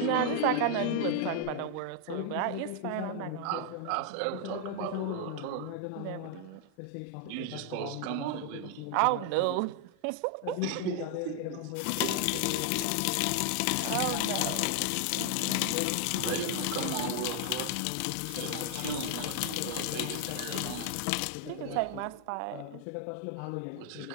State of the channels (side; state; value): both; different; correlation 0.00